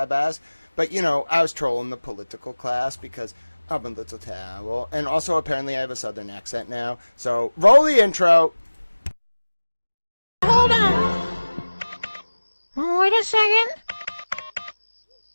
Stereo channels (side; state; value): both; inverted; correlation -1.00